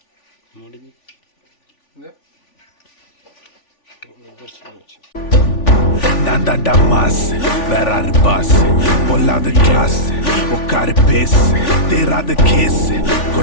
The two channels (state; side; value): late; right; 3.4 ms